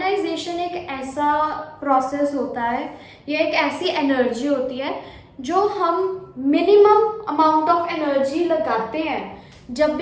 एक ऐसा process होता है, ये एक ऐसी energy होती है जो हम मिनिमम अमाउंट ऑफ एनर्जी लगाते हैं जब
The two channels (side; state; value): both; identical; correlation 1.00